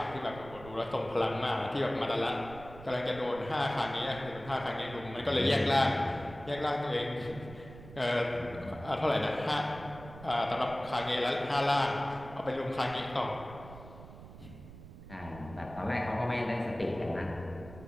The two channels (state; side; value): noise; right; rumble, 16 dB below the sound